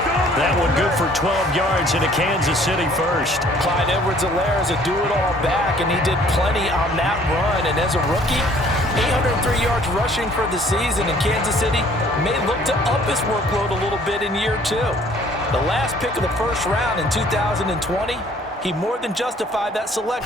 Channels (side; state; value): both; normal; correlation 0.57